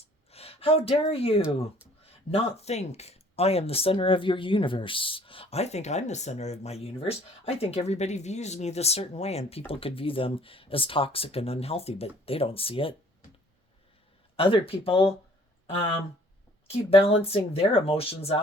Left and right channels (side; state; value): both; normal; correlation 0.56